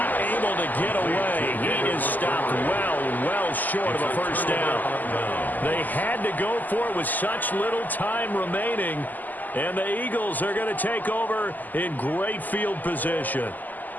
able to get away. He is stopped well short of a first down. They had to go for it with such little time remaining. And the Eagles are going to take over in great field position.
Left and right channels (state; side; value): late; right; 0.084 ms